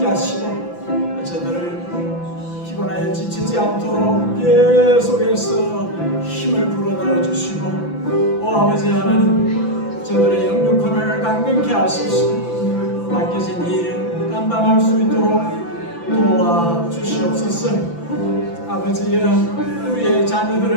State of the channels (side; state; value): right; late; 5.9 ms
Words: 하시고 저들을 피곤하여 지치지 않도록 계속해서 힘을 불어넣어 주시고, 오 아버지 하나님, 저들의 영육혼을 강건케 하소서. 맡겨진 일 감당할 수 있도록 도와주시옵소서. 아버지여, 우리의